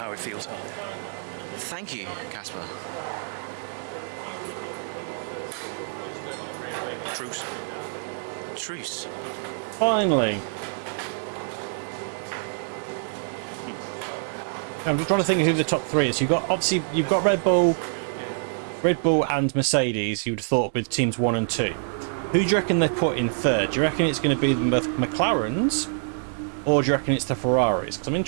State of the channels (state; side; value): silent; left; digital silence